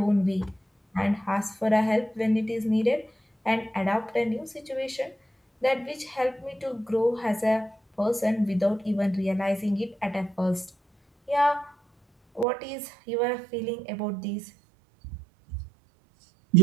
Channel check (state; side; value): drops out; left; at 12.5 s